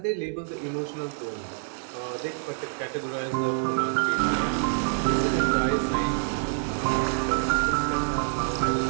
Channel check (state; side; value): silent; left; 60 dB below the other